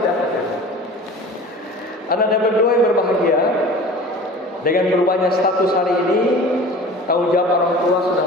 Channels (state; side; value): normal; both; correlation 0.40